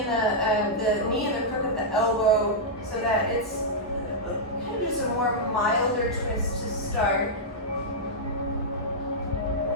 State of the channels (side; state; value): both; normal; correlation -0.09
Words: and the knee and the crook of the elbow so that it's kind of just a more milder twist to start.